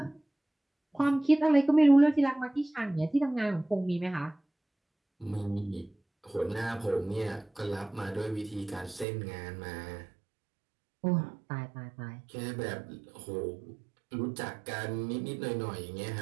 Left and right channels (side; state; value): left; drops out; at 9.1 s